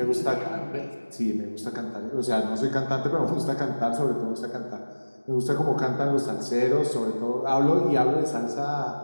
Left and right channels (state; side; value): inverted; both; correlation -1.00